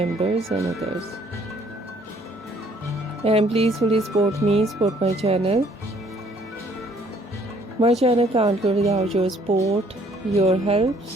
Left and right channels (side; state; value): both; normal; correlation 0.62